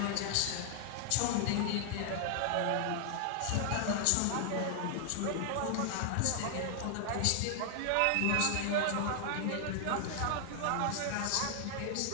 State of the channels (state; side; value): different; both; correlation 0.00